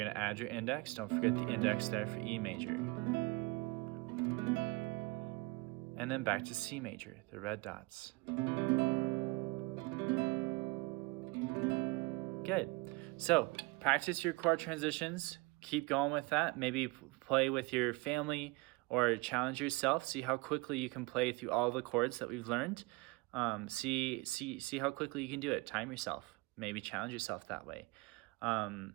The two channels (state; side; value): quieter; left; 24.9 dB